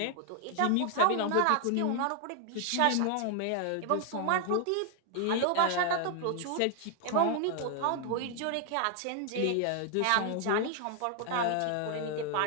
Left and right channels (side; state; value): both; different; correlation 0.00